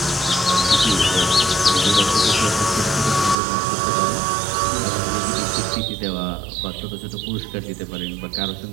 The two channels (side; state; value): left; drops out; at 3.4 s